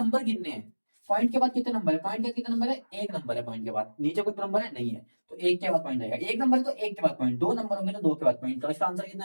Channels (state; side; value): inverted; both; correlation -1.00